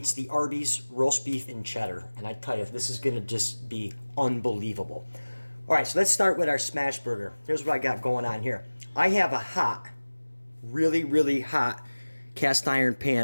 the Arby's roast beef and cheddar. And I tell you, this is going to just be unbelievable. All right, so let's start with our smash burger. Here's what I got going on here. I have a hot, really hot cast iron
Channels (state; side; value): inverted; both; correlation -1.00